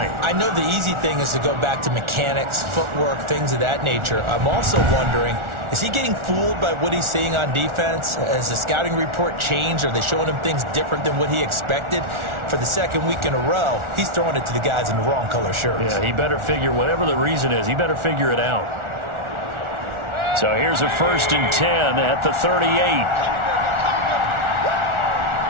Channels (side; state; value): left; late; 1.4 ms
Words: I know the easy thing is to go back to mechanics, footwork, things of that nature. I'm also wondering, is he getting fooled by what he's seeing on defense? Has the scouting report changed? Are they showing him things different than what he expected? For the 2nd week in a row, he's throwing it to the guys in the wrong color shirts. Yeah, he better figure, whatever the reason is, he better figure it out. So here's a 1st and 10 at the 38.